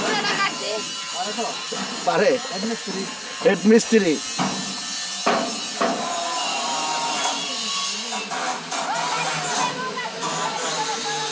পারে? হেড মিস্ত্রি।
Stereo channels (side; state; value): both; identical; correlation 1.00